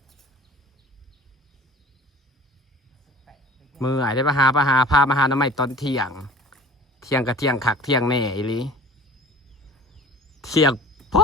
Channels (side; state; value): both; normal; correlation 0.43